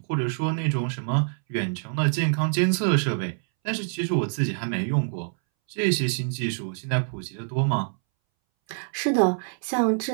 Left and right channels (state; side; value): silent; left; 61 dB below the other